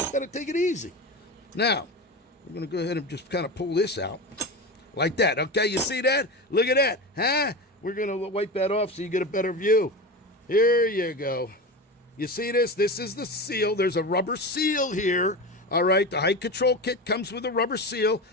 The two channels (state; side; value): normal; both; correlation 0.25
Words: to take it easy. Now, we're going to go ahead and just kind of pull this out like that, okay? You see that? Look at that, huh? We're going to wipe that off so you get a better view. Here you go. You see this? This is the seal. There's a rubber seal here. All right, the height control kit comes with a rubber seal.